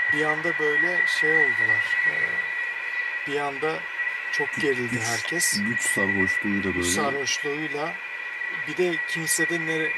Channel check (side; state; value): both; identical; correlation 1.00